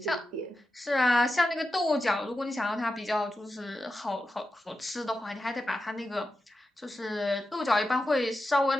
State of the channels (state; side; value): normal; both; correlation 0.90